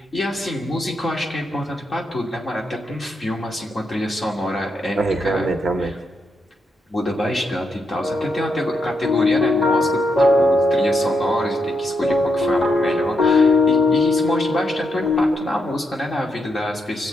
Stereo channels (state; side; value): normal; both; correlation 0.81